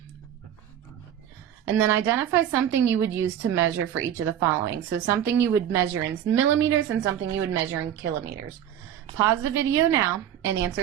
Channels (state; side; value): quieter; left; 10.4 dB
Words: And then identify something you would use to measure for each of the following. So something you would measure in millimeters and something you would measure in kilometers. Pause the video now and